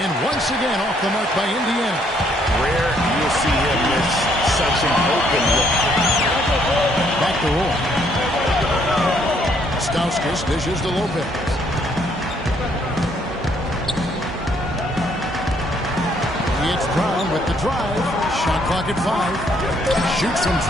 once again off the mark by Indiana. Rare you'll see him miss such an open look. Back to Roy. Stauskas dishes to Lopez. It's Brown with the drive. Shot clock at 5. Shoots from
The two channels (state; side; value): normal; both; correlation 0.68